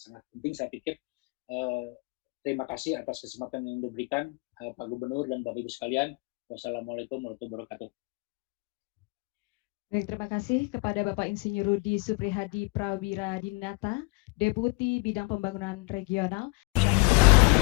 penting saya pikir. Terima kasih atas kesempatan yang diberikan Pak Gubernur dan Bapak Ibu sekalian. Wassalamualaikum warahmatullahi wabarakatuh. Baik, terima kasih kepada Bapak Insinyur Rudi Suprihadi Prawiradinata, Deputi Bidang Pembangunan Regional.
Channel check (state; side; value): quieter; right; 27.9 dB